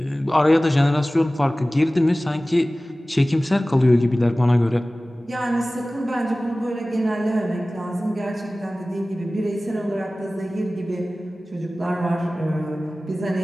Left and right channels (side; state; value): both; normal; correlation 0.97